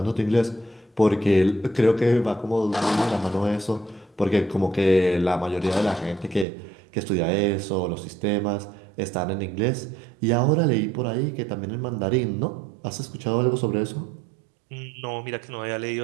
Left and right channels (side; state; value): left; drops out; at 6.5 s